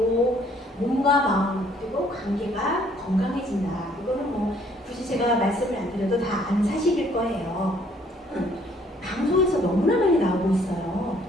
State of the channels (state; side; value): normal; both; correlation 0.62